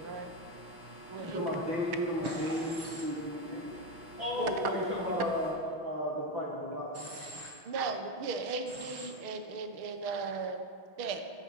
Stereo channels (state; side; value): late; left; 6.1 ms